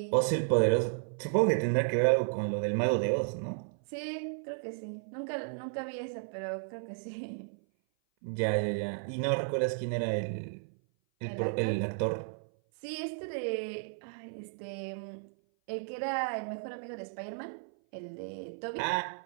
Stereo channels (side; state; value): left; silent; 56 dB below the other